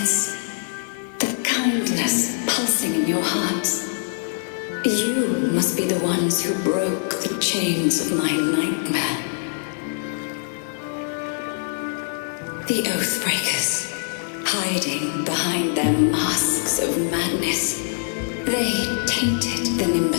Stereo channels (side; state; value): right; silent; 63 dB below the other